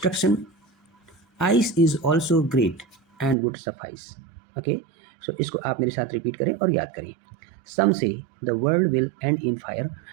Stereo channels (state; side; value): drops out; left; at 3.4 s